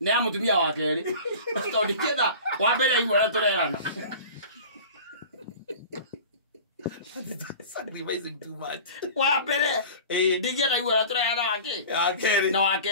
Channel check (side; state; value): both; inverted; correlation -0.38